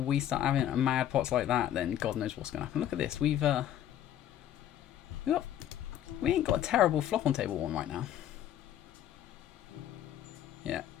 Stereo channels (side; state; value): right; quieter; 11.3 dB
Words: start having mad pots like that, then God knows what's going to happen. Look at this. We ain't got a terrible flop on table 1 right now. Yeah,